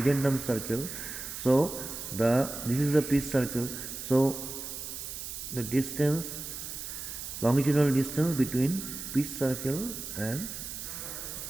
circle. So this is the pitch circle. So the distance, longitudinal distance between pitch circle and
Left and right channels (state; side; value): noise; right; hiss, 8 dB below the sound